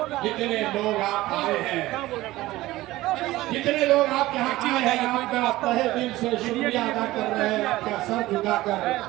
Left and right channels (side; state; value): left; quieter; 17.4 dB